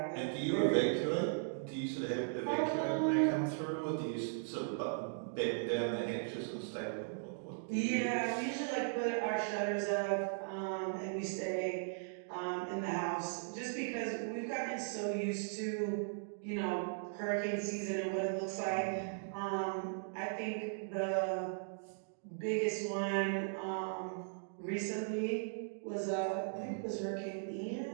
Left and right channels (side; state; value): left; silent; digital silence